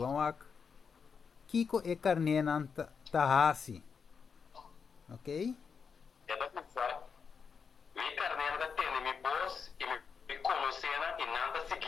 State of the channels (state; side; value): quieter; right; 5.9 dB